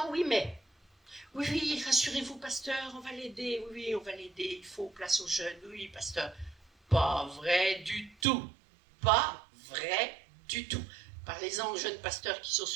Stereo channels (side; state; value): left; drops out; at 8.2 s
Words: oui, mais... Oui, rassurez-vous, pasteur, on va l'aider. Oui, on va l'aider. Il faut place aux jeunes. Oui, pasteur. Pas vrai du tout. Pas vrai du tout. Parlez-en aux jeunes pasteurs qui sont